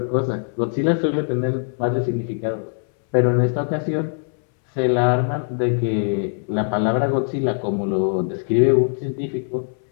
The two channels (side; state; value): right; silent; 65 dB below the other